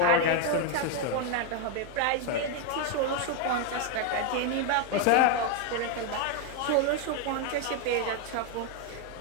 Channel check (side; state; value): both; different; correlation 0.01